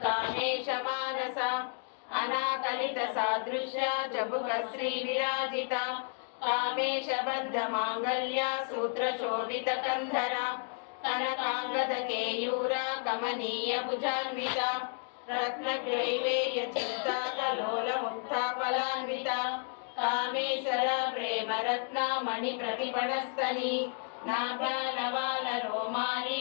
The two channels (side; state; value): right; silent; 56 dB below the other